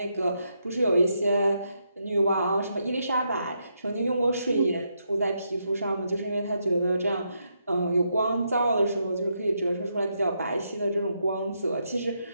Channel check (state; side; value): inverted; both; correlation -0.80